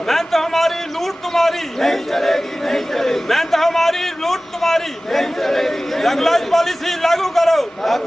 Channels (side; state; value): both; normal; correlation 0.97